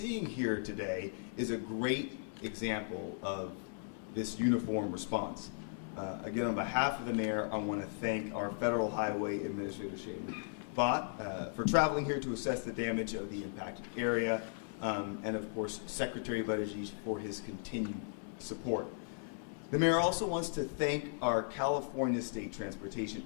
here today is a great example of this uniform response. Again, on behalf of the mayor, I want to thank our Federal Highway Administrator, Shaylin Bott, for traveling here to assess the damage of the impacted area, and of course, Secretary Buttigieg for his continued support. The mayor also wants to thank our California State Transportation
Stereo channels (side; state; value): right; silent; 53 dB below the other